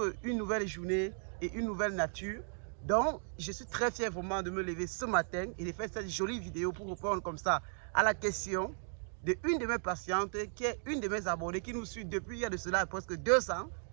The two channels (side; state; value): left; silent; 54 dB below the other